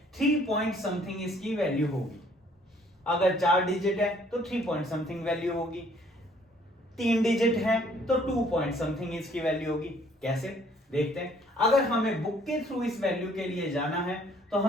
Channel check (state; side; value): normal; both; correlation 0.61